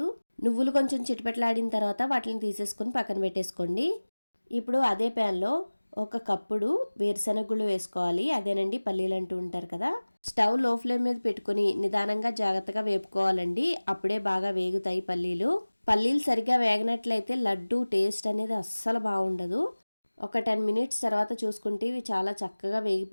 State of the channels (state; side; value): inverted; both; correlation -1.00